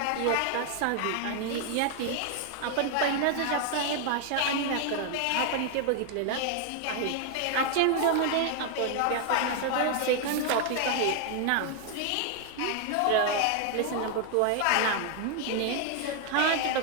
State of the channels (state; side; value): different; both; correlation 0.00